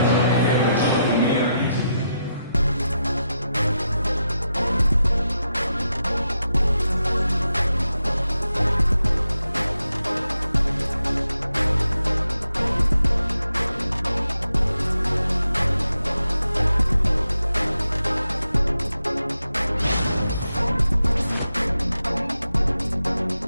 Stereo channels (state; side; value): inverted; both; correlation -0.85